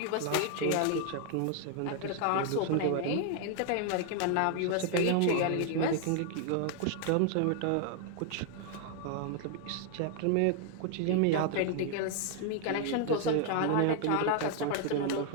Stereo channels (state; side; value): different; both; correlation 0.00